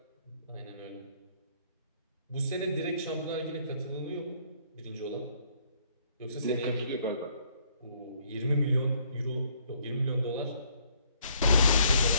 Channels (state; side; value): inverted; both; correlation -0.65